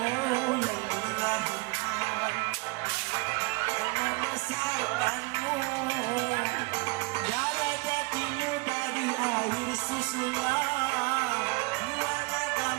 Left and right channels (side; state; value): left; quieter; 26.0 dB